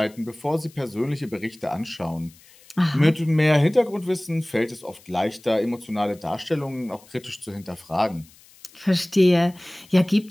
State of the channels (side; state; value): left; noise; hiss, 26 dB below the sound